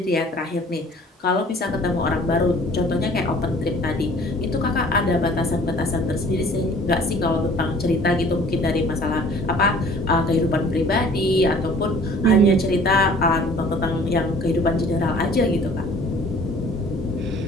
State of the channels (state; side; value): normal; both; correlation 0.51